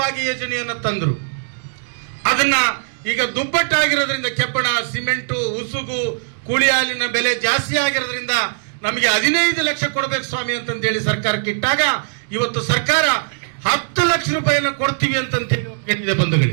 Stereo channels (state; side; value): silent; left; digital silence